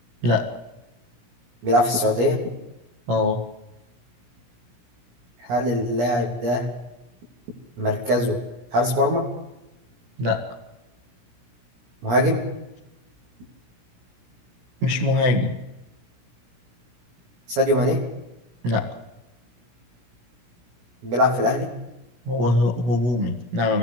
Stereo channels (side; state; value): left; late; 17 ms